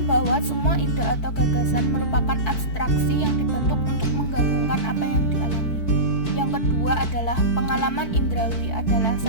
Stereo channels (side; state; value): right; late; 4.6 ms